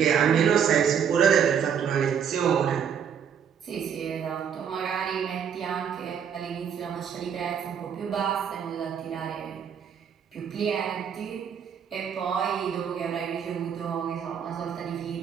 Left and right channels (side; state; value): left; quieter; 7.8 dB